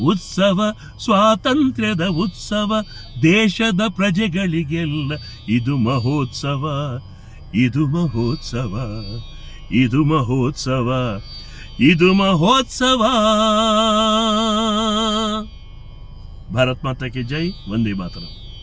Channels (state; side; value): identical; both; correlation 1.00